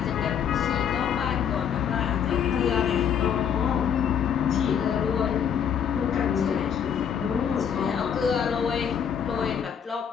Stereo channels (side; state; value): right; quieter; 8.0 dB